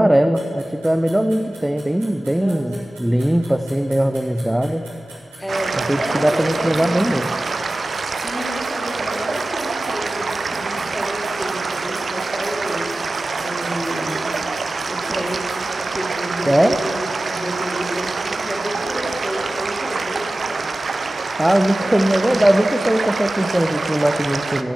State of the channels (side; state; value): both; normal; correlation 0.96